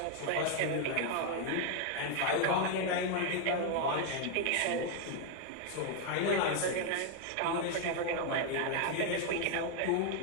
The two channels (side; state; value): both; different; correlation 0.00